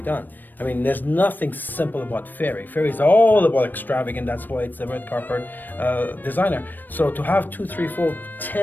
I mean, there's nothing simple about Fairy. Fairy is all about extravagant. That's why it's the red carpet designer. So to have 2, 3, 4,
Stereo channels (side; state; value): right; late; 0.090 ms